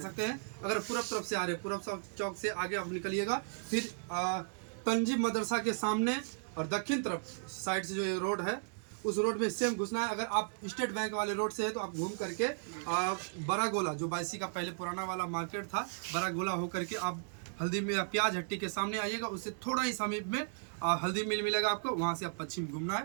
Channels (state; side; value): silent; left; digital silence